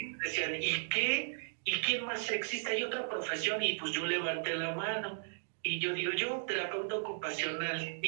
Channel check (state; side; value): silent; left; digital silence